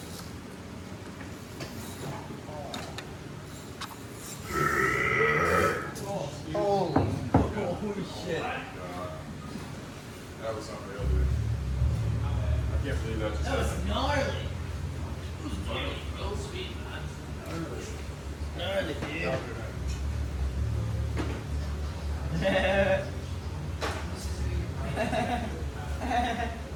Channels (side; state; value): both; identical; correlation 1.00